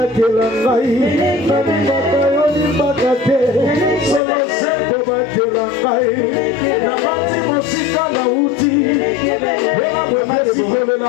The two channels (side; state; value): right; drops out; at 4.2 s